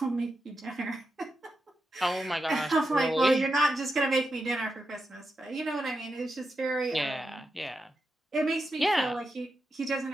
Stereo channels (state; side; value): normal; both; correlation 0.88